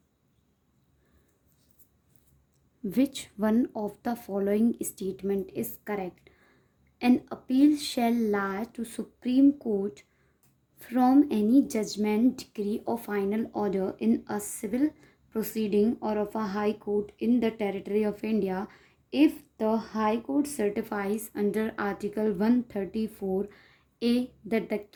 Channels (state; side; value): identical; both; correlation 1.00